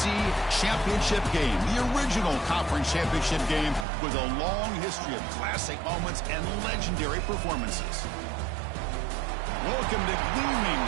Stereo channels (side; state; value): left; drops out; at 3.9 s